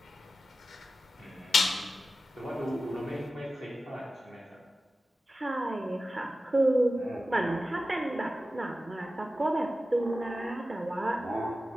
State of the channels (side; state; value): both; normal; correlation 0.94